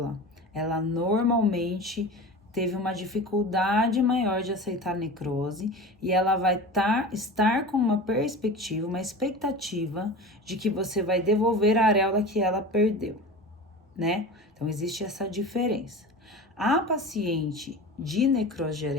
ela normalmente teve uma dificuldade maior de aceitar a necrose e ela vai estar com uma perspectiva, uma expectativa de que você vai devolver a areola que ela perdeu, né? Então, existe essa diferença. A paciente de necrose de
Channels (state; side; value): normal; both; correlation 0.32